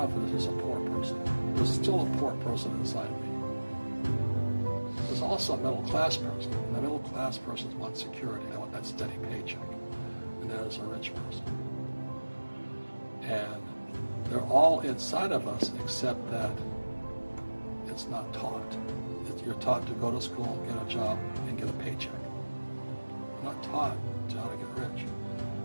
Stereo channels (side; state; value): both; inverted; correlation -1.00